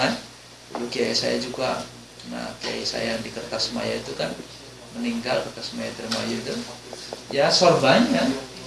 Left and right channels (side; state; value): both; identical; correlation 1.00